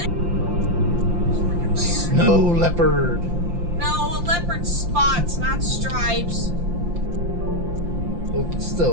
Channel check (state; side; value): late; left; 5.8 ms